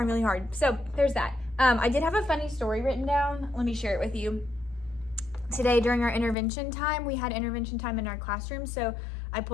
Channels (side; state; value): right; drops out; at 6.4 s